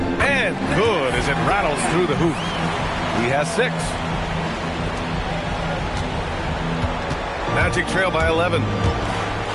And good as it rattles through the hoop. He has 6. Magic trail by 11.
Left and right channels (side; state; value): both; identical; correlation 1.00